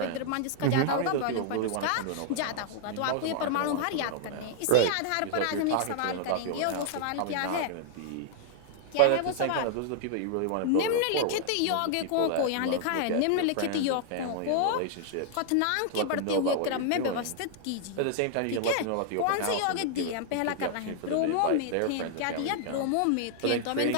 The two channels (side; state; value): both; different; correlation 0.00